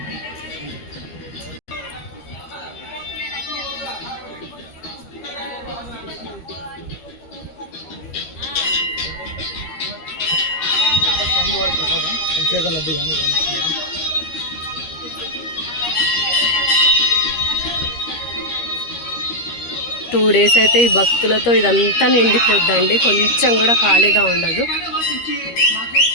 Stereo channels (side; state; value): right; late; 13 ms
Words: అభిషేకం లడ్డు కానీ 2 days అయితే ఈ భక్తులతో ఇదంతా నిండిపోద్దండి. కొంచెం కూడా ఖాళీగా ఉండదు.